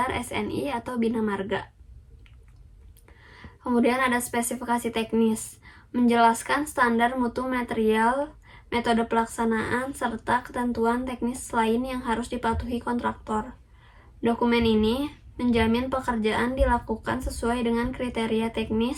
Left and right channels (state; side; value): identical; both; correlation 1.00